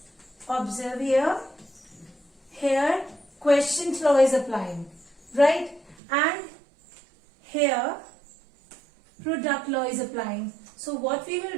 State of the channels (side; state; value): left; drops out; at 6.0 s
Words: observe here. Here quotient law is applying, right? And here product law is applying. So what we will